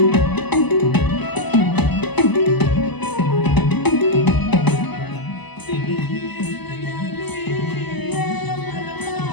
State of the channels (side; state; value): right; late; 0.99 ms